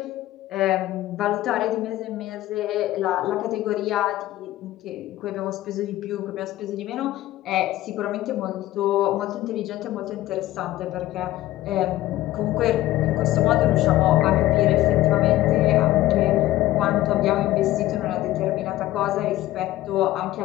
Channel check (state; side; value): quieter; right; 15.6 dB